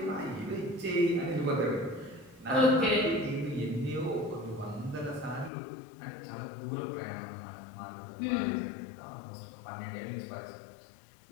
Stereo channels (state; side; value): drops out; right; at 5.5 s